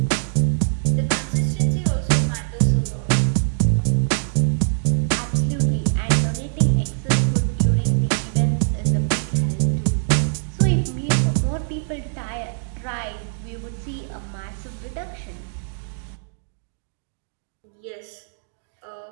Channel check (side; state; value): left; silent; digital silence